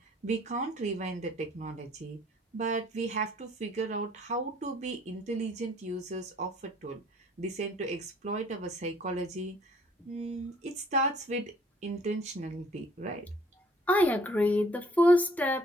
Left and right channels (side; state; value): both; normal; correlation 0.58